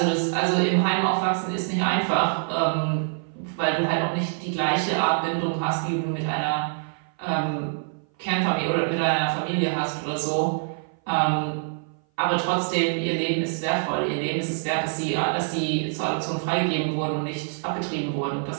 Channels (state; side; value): silent; left; 58 dB below the other